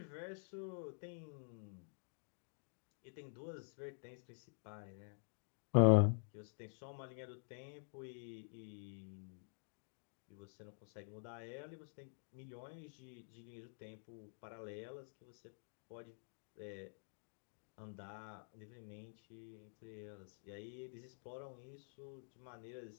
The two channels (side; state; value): right; silent; digital silence